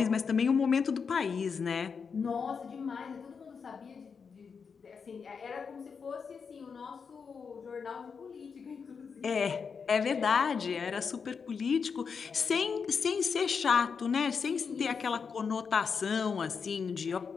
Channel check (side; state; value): right; quieter; 5.8 dB